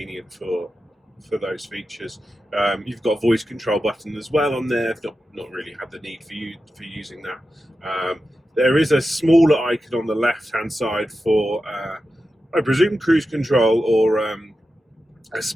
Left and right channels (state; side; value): normal; both; correlation 0.91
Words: for those features. You've got a voice control button as well on there. I've not really had the need for using that. There is a smaller icon on the left hand side for I presume cruise control or a